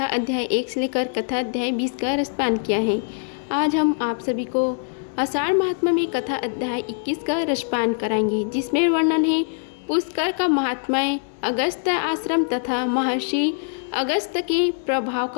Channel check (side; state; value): right; silent; digital silence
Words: अध्याय 1 से लेकर कथा अध्याय 20 का रसपान किया है। आज हम आप सभी को आषाढ़ महात्म्य में कथा अध्याय 21 का रसपान कराएंगे, जिसमें वर्णन है पुष्कर का महात्म्य, अगस्त आश्रम तथा महर्षि अगस्त के प्रभाव